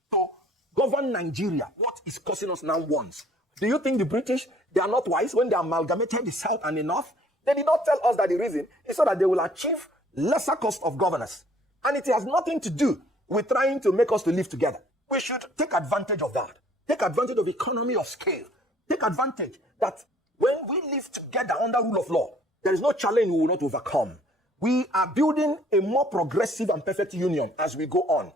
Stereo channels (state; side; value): normal; both; correlation 0.57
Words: to govern Nigeria what is costing us now once. Do you think the British, they are not wise when they amalgamated the south and the north? They did not tell us that the reason is so that they will achieve lesser cost of governance, and it has nothing to do with trying to make us to live together. We should take advantage of that. Take advantage of economy of scale. Take advantage that when we live together under rule of law, there is no challenge we will not overcome. We are building a more progressive and perfect union as we go on.